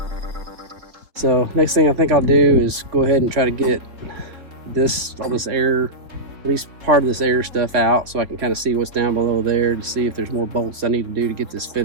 So next thing I think I'll do is go ahead and try to get all this air, at least part of this air stuff out, so I can kind of see what's down below there to see if there's more bolts I need to do to get this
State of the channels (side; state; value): left; late; 4.0 ms